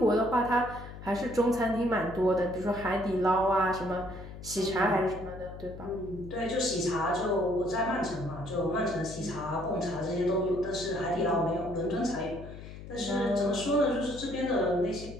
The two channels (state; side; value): noise; left; hum, 13 dB below the sound